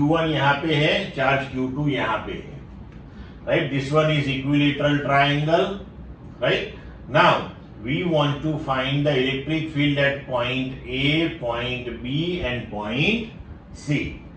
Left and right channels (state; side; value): identical; both; correlation 1.00